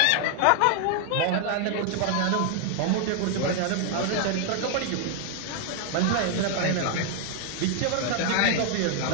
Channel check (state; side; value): different; both; correlation 0.00